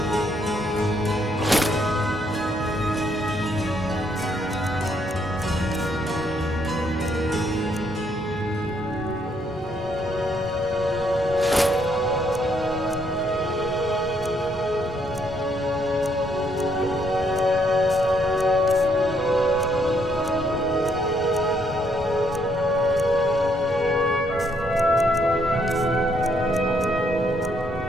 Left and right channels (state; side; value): normal; both; correlation 0.71